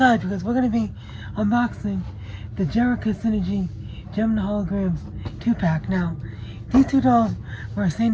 because we're going to be unboxing the Jerrica Synergy Gem and Holograms 2-pack. Now, these two dolls were a San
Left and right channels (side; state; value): both; identical; correlation 1.00